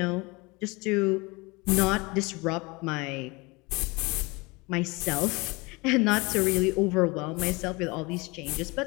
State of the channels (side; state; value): right; quieter; 25.5 dB